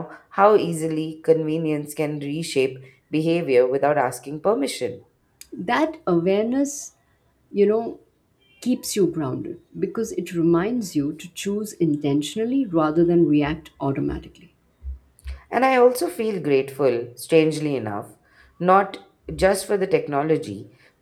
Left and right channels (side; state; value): both; identical; correlation 1.00